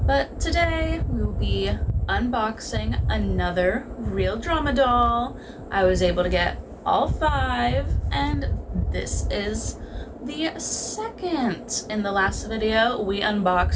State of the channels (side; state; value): both; identical; correlation 1.00